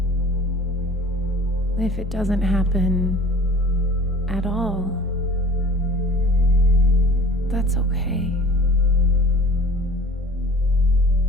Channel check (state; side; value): normal; both; correlation 0.45